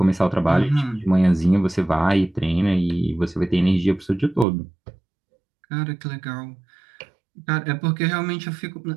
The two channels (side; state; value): left; drops out; at 4.5 s